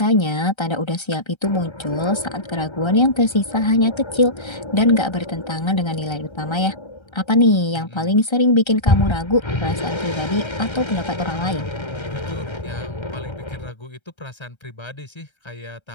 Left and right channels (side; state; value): right; late; 1.3 ms